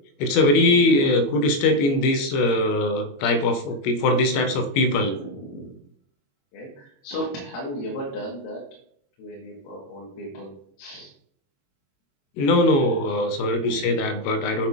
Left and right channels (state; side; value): late; right; 21 ms